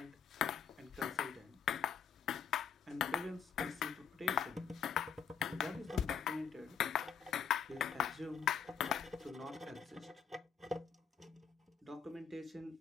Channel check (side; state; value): right; quieter; 7.4 dB